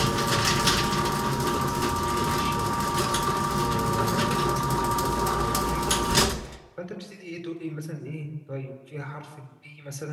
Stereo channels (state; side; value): identical; both; correlation 1.00